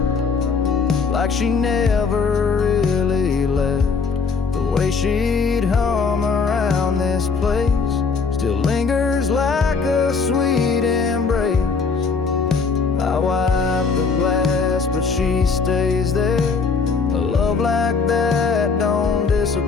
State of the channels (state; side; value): quieter; right; 5.0 dB